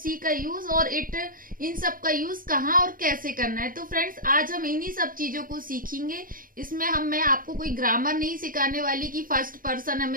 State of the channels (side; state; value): left; late; 0.41 ms